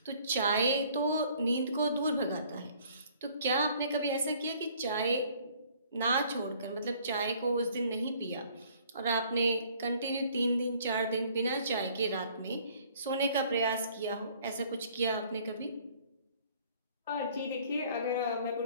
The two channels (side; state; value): both; inverted; correlation -0.57